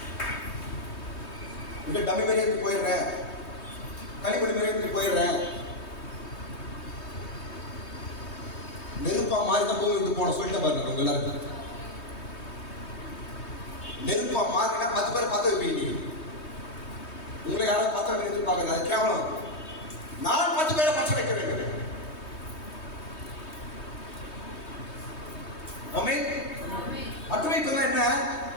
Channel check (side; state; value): right; late; 3.2 ms